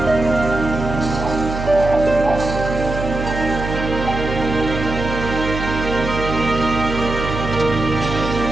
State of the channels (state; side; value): noise; right; hum, 6 dB below the sound